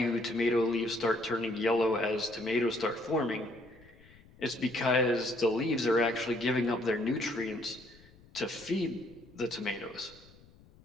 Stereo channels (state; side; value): noise; left; rumble, 25 dB below the sound